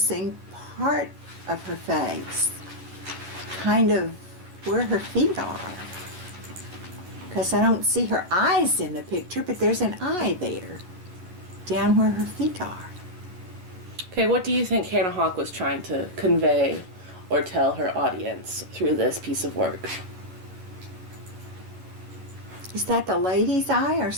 part of her face, kind of where her feet are. Because I don't see her eyes in the picture, but there's an eye there, down where her feet are. Okay, what do you think Hannah Hawk was trying to convey or tell her audience through this piece of work? Is that the lady's eye or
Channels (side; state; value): left; late; 11 ms